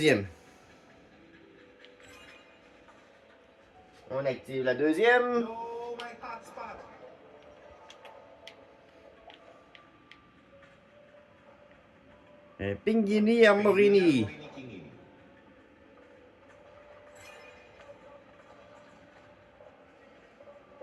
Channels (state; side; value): identical; both; correlation 1.00